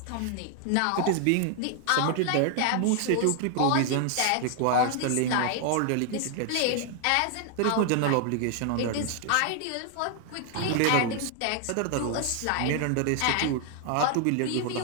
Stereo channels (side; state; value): both; different; correlation 0.00